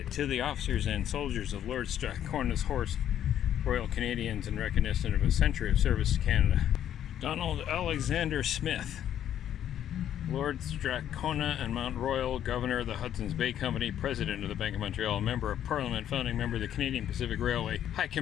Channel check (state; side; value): quieter; right; 10.6 dB